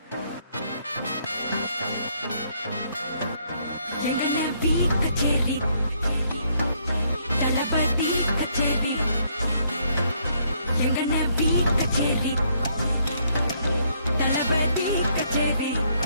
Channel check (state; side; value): inverted; both; correlation -0.70